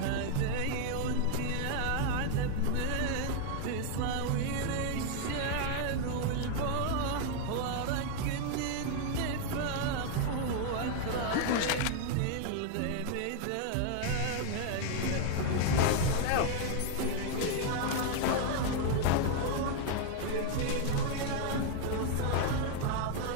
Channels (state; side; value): different; both; correlation 0.00